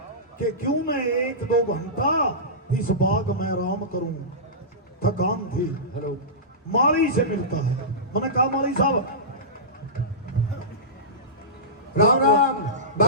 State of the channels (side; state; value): both; normal; correlation -0.19